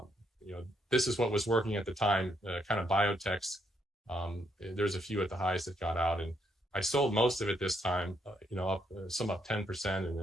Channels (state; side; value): normal; both; correlation 0.74